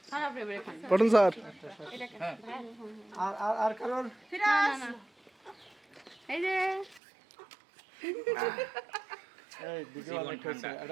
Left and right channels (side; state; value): left; drops out; at 7.0 s